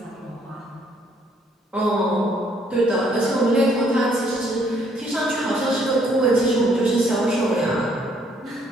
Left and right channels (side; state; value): both; normal; correlation 0.67